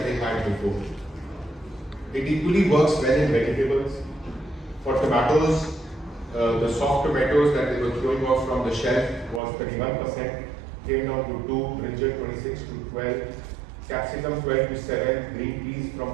they had before. It equally works well in vegetables. For tomatoes, the soft tomatoes that they were throwing off from the shelf was 31%, came down to 2, brinjal 26 to 12, capsicum 12 to 7, green peas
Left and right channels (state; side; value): drops out; left; at 9.4 s